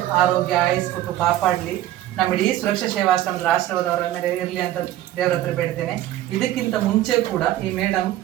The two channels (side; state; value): left; quieter; 13.6 dB